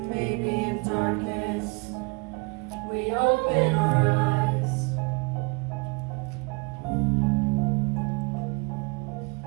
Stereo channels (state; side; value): quieter; left; 30.1 dB